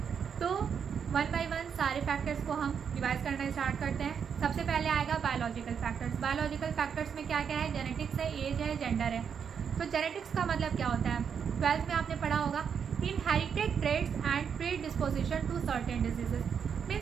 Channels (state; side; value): quieter; left; 7.2 dB